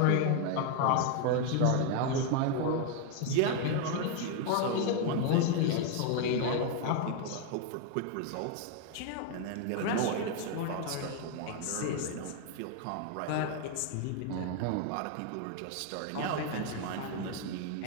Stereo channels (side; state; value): both; different; correlation 0.01